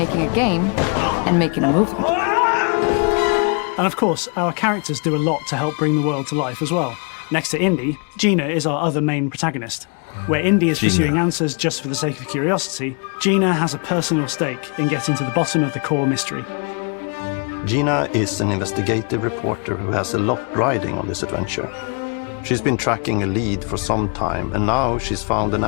a game and making a movie. And of course, our characters do a lot to help bring the world to life as well. Next to Indy, Gina is our other main protagonist. Where Indy is pursuing answers just for the sake of curiosity, Gina has a personal stake in getting to the bottom of the core mystery. Gina is an investigative reporter who has a lot riding on this adventure. She's been tracking a lead for some time, and now she's found an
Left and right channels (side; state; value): right; quieter; 38.0 dB